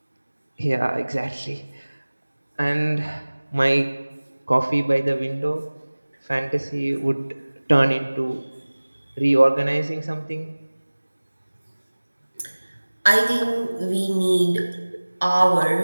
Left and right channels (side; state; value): both; inverted; correlation -1.00